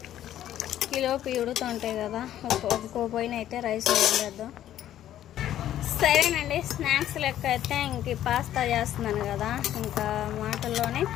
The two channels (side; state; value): right; quieter; 11.9 dB